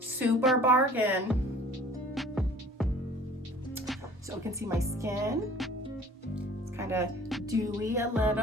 bargain. So you can see my skin. It's kind of dewy, a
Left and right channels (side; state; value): both; normal; correlation 0.49